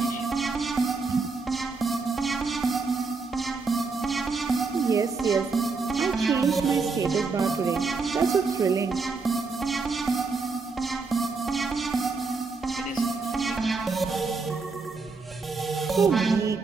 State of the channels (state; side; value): quieter; left; 4.3 dB